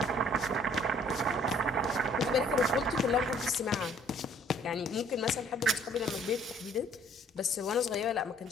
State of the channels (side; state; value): both; normal; correlation 0.58